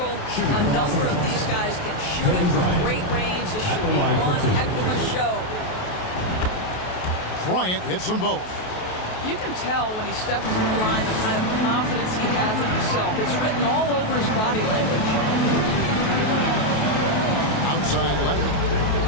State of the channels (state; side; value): late; right; 28 ms